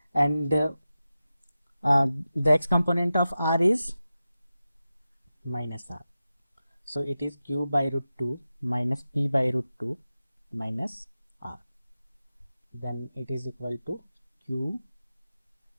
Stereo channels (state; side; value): inverted; both; correlation -0.93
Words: and the x component of R is minus R. So it is Q by root 2 minus P by root 2 minus R. Then it is equal to Q